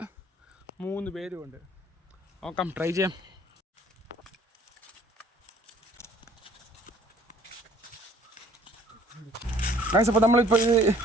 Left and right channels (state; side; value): normal; both; correlation 0.57